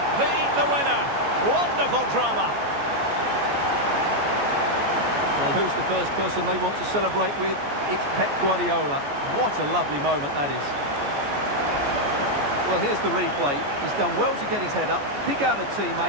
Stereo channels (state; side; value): late; left; 14 ms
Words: be the winner. Wonderful drama. Well, who's the first person they want to celebrate with? It's Pep Guardiola. What a lovely moment that is. Well, here's the replay. He's done well to get his head up, pick out a